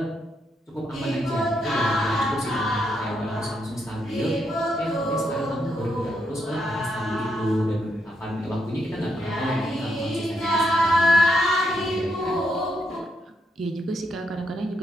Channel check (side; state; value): both; normal; correlation 0.79